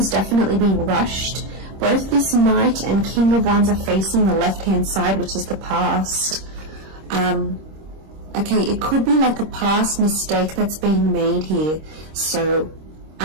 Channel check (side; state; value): left; late; 26 ms